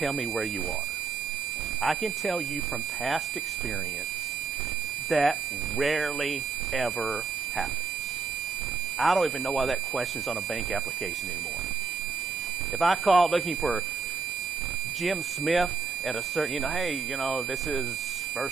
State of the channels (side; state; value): left; quieter; 4.9 dB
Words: me where you are. I can tell you from past experience that rarely ever happens. I don't even know why that question's on a bank application anymore. If I call looking for Jim Smith at a certain, hey, this is